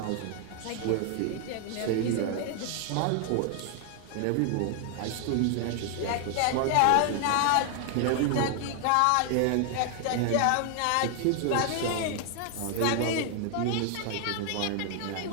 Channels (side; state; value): both; different; correlation 0.00